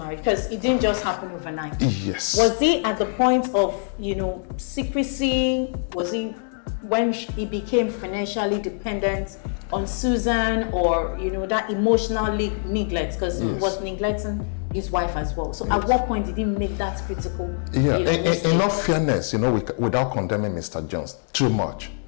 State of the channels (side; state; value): right; silent; 61 dB below the other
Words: Because it didn't just happen overnight. Yes. Was he at the point of, secrecy? Was he when he became financially dependent on Susan, or that emotional neglect? Because he was neglecting his wife as well. So at what point did he make that critical? Yeah, mistake? in all fairness, without condemning Mr. Jones too much,